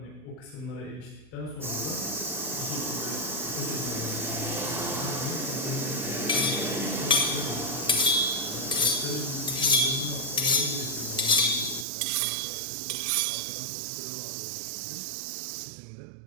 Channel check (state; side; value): drops out; left; at 11.9 s